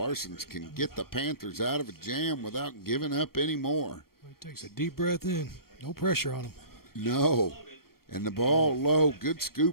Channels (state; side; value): late; right; 0.93 ms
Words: can get the Panthers out of a jam without giving up any more. He takes a deep breath in. No pressure on him. No. And the ball low. Good